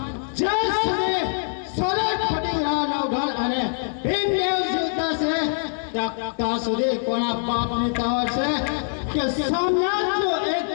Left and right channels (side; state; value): right; silent; digital silence